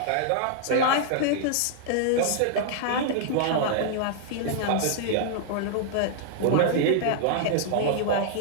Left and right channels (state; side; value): different; both; correlation -0.01